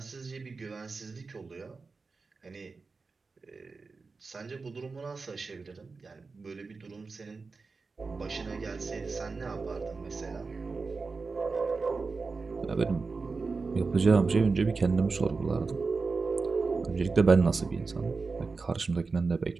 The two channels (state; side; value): quieter; left; 4.3 dB